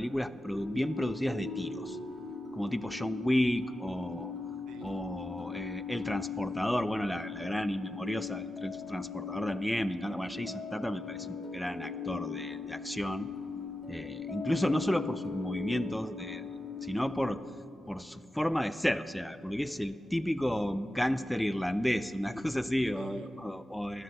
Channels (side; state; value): both; normal; correlation 0.92